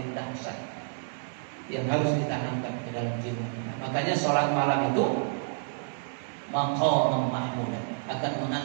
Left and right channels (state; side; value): silent; left; 58 dB below the other